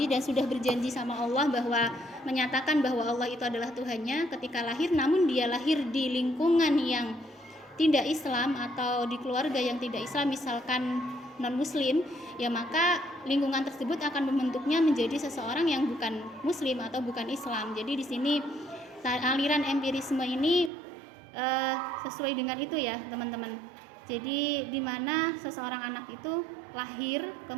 dan sudah berjanji sama Allah bahwa menyatakan bahwa Allah itu adalah Tuhannya, ketika lahir namun dia lahir di lingkungan yang tidak Islam atau di keluarga yang tidak Islam, misalkan non-muslim, ya maka lingkungan tersebut akan membentuknya menjadi seseorang yang bukan muslim atau bukan Islam. Jadi di sini aliran empirisme ini sesuai dengan itu ya teman-teman. Jadi di mana seseorang anak itu lahir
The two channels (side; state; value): left; drops out; at 20.7 s